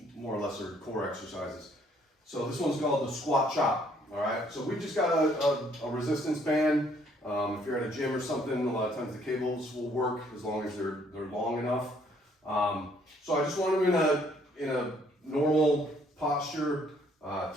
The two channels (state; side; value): normal; both; correlation 0.65